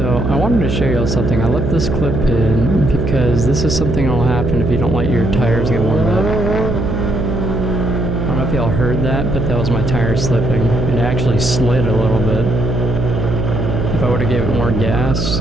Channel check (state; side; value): noise; right; hum, 1 dB below the sound